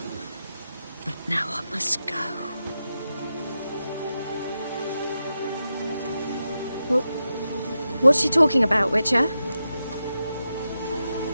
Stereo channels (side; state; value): both; inverted; correlation -0.89